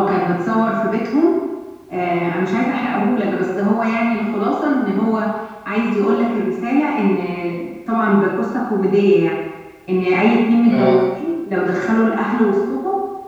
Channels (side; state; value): both; identical; correlation 1.00